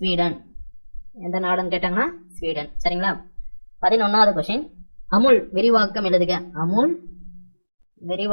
எந்த நாடுன்னு கேட்டாங்கன்னா ஸ்வீடன். சரிங்களா? 11வது கொஸ்டின், அமுல் விரிவாக்கம் எழுதுக. அமுல்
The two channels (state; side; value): inverted; both; correlation -1.00